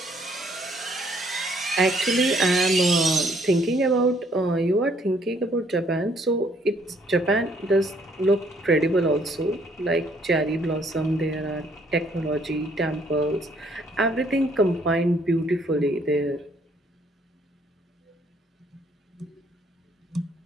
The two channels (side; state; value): both; normal; correlation 0.66